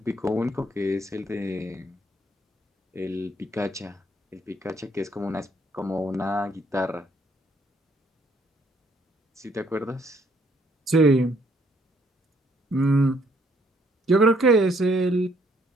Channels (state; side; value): normal; both; correlation 0.67